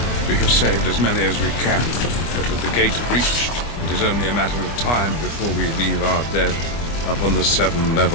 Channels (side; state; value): right; late; 25 ms